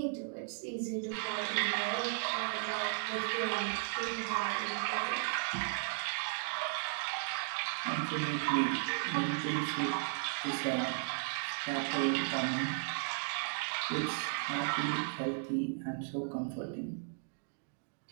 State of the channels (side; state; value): left; silent; digital silence